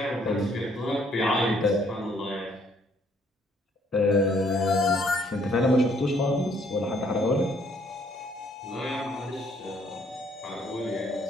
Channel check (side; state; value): both; normal; correlation 0.65